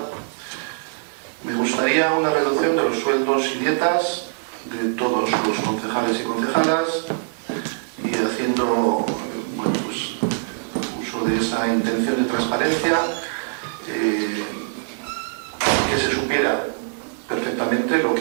Me gustaría una reducción de los sueldos y dietas de todos los concejales y concejalas y haciendo bueno, pues, uso de esa intención de transparencia, que se supiera perfectamente lo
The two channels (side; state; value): left; silent; digital silence